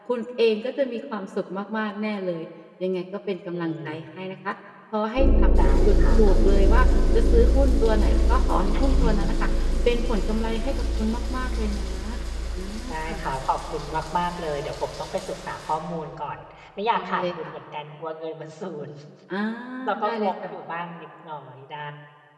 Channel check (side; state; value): both; identical; correlation 1.00